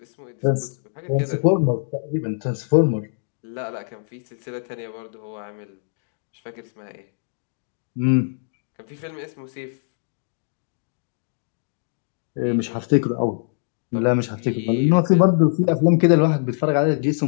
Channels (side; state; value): right; silent; digital silence